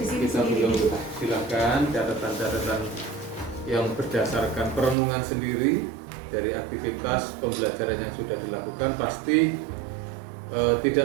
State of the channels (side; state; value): left; drops out; at 5.0 s